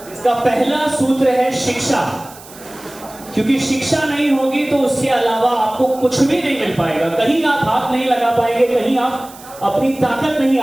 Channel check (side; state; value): right; noise; hiss, 20 dB below the sound